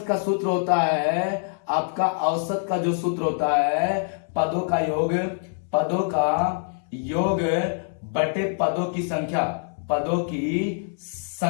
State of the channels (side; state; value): right; silent; 62 dB below the other